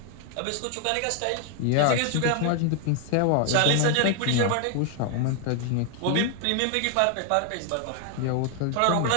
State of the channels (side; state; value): both; different; correlation 0.00